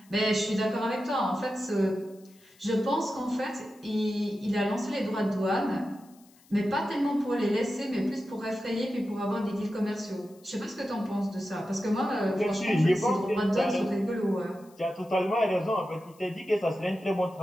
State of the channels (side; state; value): left; noise; hiss, 29 dB below the sound